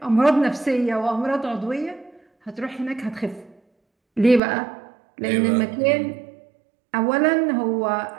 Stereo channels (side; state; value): left; drops out; at 4.4 s